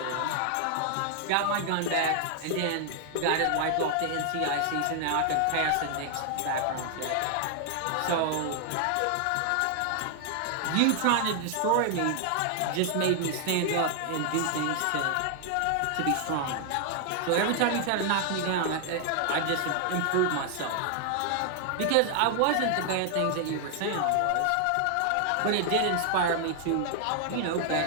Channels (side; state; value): both; different; correlation 0.00